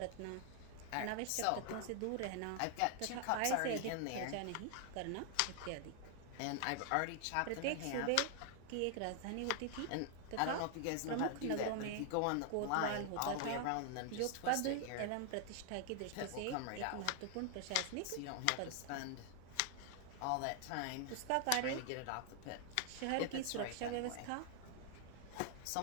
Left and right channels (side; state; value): both; different; correlation 0.00